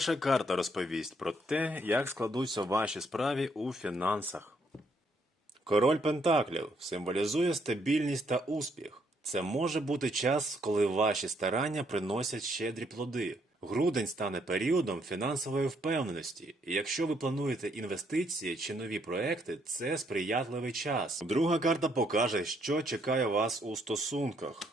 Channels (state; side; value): normal; both; correlation 0.71